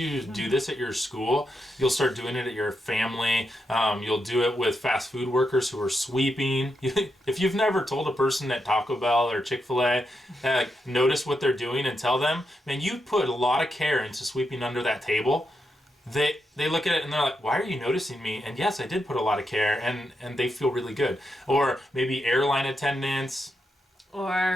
do this at your school, you'll start doing it at your family. You'll do it with fast food workers who are sweeping. If you've never told a person at Taco Bell or Chick-fil-A, notice what they're doing and tell them, man, you put a lot of care into sweeping under that table. They look at it and they're like, why are you noticing me? And yes, I did put a lot of care, and they feel really good. Or maybe airline attendants.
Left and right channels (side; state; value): both; normal; correlation 0.84